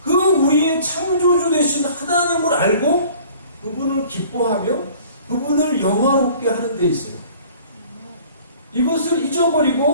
그 우리의 창조주 되신 하나님을 알고 그분을 기뻐하며 그분을 영화롭게 하는 데 있어요. 이것을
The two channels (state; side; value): inverted; both; correlation -0.50